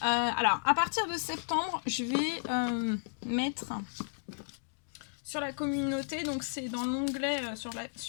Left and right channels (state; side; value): silent; right; digital silence